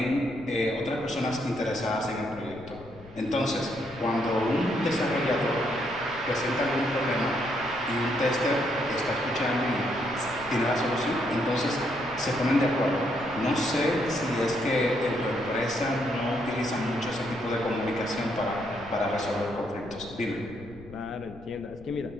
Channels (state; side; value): noise; left; rumble, 19 dB below the sound